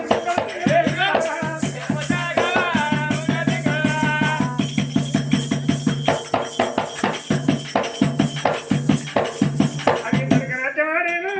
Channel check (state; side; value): identical; both; correlation 1.00